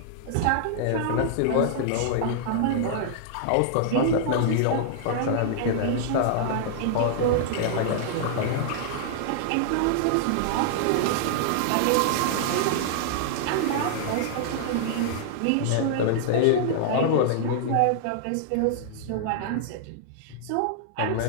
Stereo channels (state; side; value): different; both; correlation -0.01